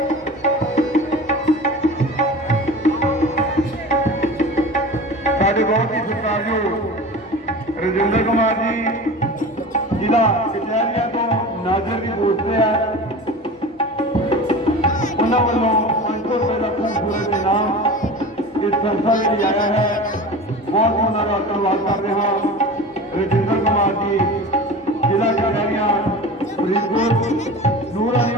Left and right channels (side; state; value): both; normal; correlation 0.34